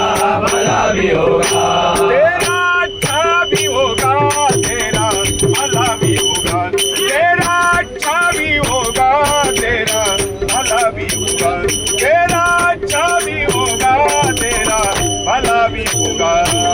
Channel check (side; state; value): both; identical; correlation 1.00